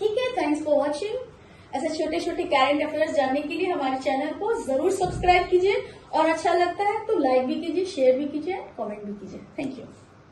है, थैंक्स फॉर वॉचिंग। ऐसे छोटे छोटे करंट अफेयर्स जानने के लिए हमारे चैनल को जरूर सब्सक्राइब कीजिए, और अच्छा लगता है तो लाइक भी कीजिए, शेयर भी कीजिए, कमेंट भी कीजिए। Thank you.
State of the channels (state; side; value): identical; both; correlation 1.00